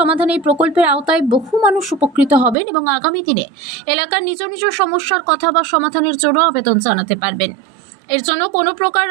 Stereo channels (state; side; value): drops out; left; at 2.6 s